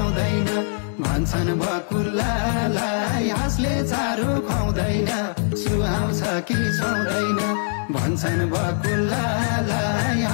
भन्छन् बकुल्लालाई हाँसले चारो खुवाउँदैन सुहाउँछ कि सुहाउँदैन भन्छन् बकुल्लालाई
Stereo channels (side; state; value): right; silent; digital silence